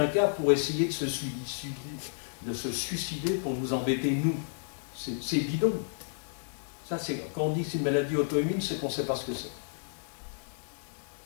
cas pour essayer de se suicider pour nous embêter, nous. C'est bidon. Ça, quand on dit que c'est une maladie auto-immune, c'est qu'on ne sait pas ce que c'est.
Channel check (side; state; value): right; silent; 57 dB below the other